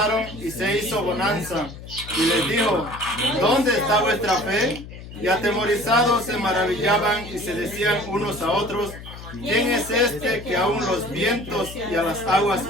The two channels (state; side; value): noise; left; hum, 14 dB below the sound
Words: y se hizo bonanza. Y les dijo: ¿dónde está vuestra fe? Y atemorizados se maravillaban y se decían unos a otros: ¿quién es este que aún los vientos y a las aguas